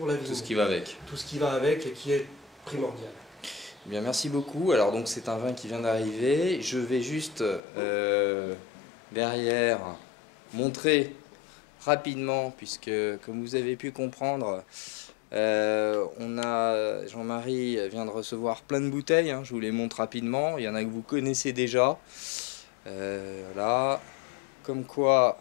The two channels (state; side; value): drops out; right; at 7.6 s